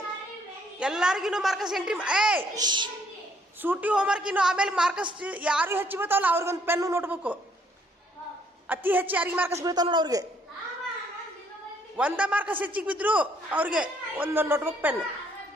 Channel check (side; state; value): both; normal; correlation 0.66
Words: ಎಲ್ಲರಿಗೂ ಮಾರ್ಕಸ್ ಎಂಟ್ರಿ. ಸೂಟಿ ಹೋಮ್ವರ್ಕ್ ಇನ್ನು ಆಮೇಲೆ ಮಾರ್ಕಸ್ ಯಾರು ಹೆಚ್ಚು ಬೀಳ್ತಾವಲ್ಲ ಅವ್ರಿಗೊಂದು ಪೆನ್ನು ನೋಟ್ಬುಕ್. ಅತಿ ಹೆಚ್ಚು ಯಾರಿಗೆ ಮಾರ್ಕಸ್ ಬೀಳ್ತಾವ ನೋಡು ಅವ್ರಿಗೆ. 1 ಮಾರ್ಕಸ್ ಹೆಚ್ಚಿಗೆ ಬಿದ್ರು ಅವ್ರಿಗೆ ಒಂದೊಂದು ನೋಟ್ಬುಕ್ ಪೆನ್.